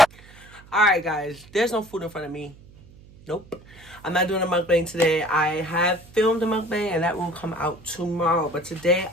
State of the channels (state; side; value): noise; right; hum, 23 dB below the sound